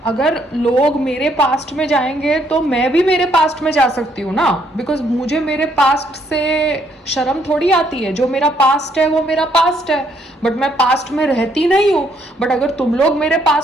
अगर लोग मेरे पास्ट में जाएंगे तो मैं भी मेरे पास्ट में जा सकती हूँ ना, बिकॉज मुझे मेरे पास्ट से शर्म थोड़ी आती है। जो मेरा पास्ट है वो मेरा पास्ट है, बट मैं पास्ट में रहती नहीं हूँ। बट अगर तुम लोग मेरे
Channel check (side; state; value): both; normal; correlation 0.70